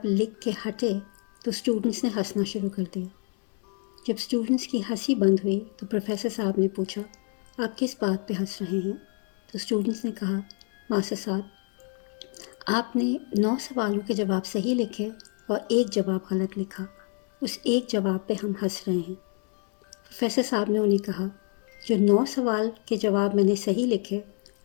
لکھ کے ہٹے تو اسٹوڈنٹس نے ہنسنا شروع کر دیا. جب اسٹوڈنٹس کی ہنسی بند ہوئی تو پروفیسر صاحب نے پوچھا، آپ کس بات پہ ہنس رہے ہیں؟ تو اسٹوڈنٹس نے کہا، ماسٹر صاحب آپ نے 9 سوالوں کے جواب صحیح لکھے اور ایک جواب غلط لکھا. اس ایک جواب پہ ہم ہنس رہے ہیں. پروفیسر صاحب نے انہیں کہا، جو 9 سوال کے جواب میں نے صحیح لکھے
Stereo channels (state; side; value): quieter; right; 38.7 dB